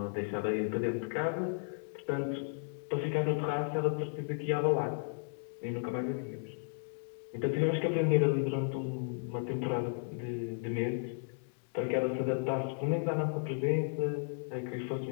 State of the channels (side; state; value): right; silent; digital silence